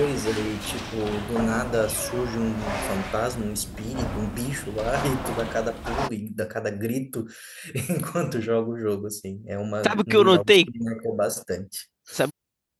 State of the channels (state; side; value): identical; both; correlation 1.00